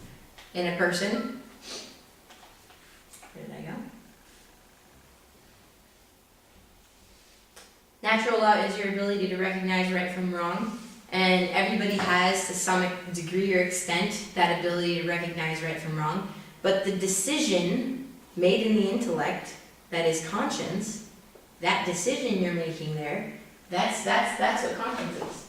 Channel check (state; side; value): identical; both; correlation 1.00